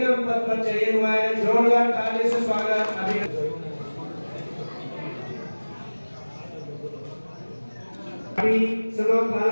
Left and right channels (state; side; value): inverted; both; correlation -1.00